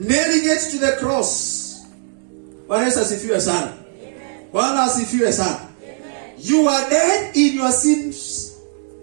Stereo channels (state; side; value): silent; left; digital silence